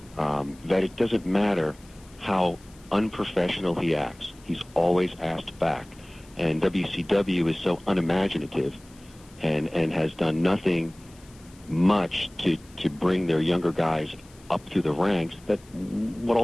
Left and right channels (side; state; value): left; noise; hiss, 26 dB below the sound